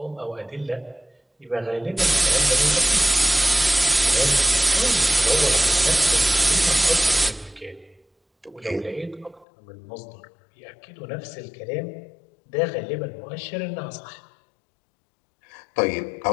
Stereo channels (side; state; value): right; drops out; at 9.5 s